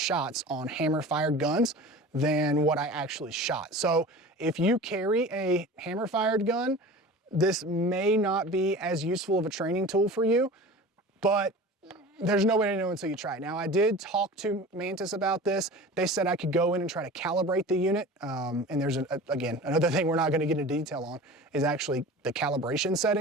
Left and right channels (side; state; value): both; normal; correlation 0.37